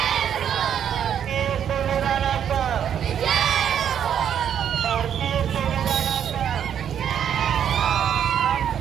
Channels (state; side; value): quieter; left; 9.0 dB